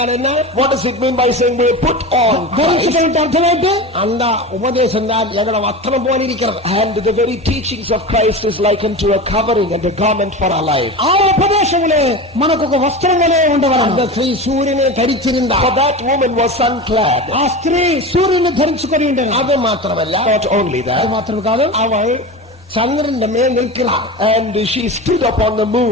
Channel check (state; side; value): normal; both; correlation 0.28